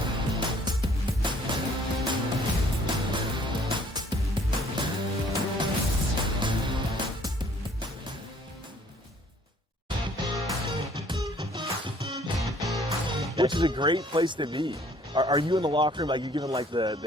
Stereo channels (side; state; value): both; normal; correlation 0.58